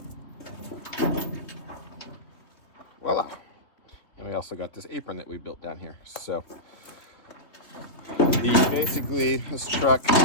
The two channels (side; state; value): right; late; 3.3 ms